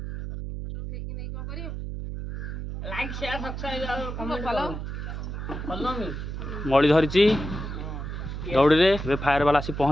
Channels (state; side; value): noise; right; hum, 6 dB below the sound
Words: मड़ी धरी दौड़ी रे फायर वाला आसी